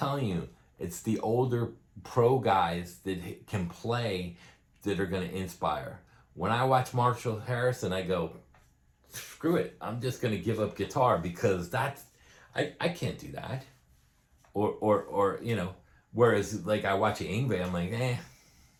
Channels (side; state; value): both; identical; correlation 1.00